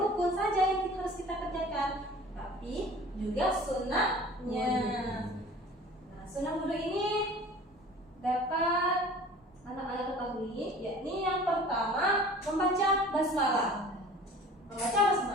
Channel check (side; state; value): both; normal; correlation 0.45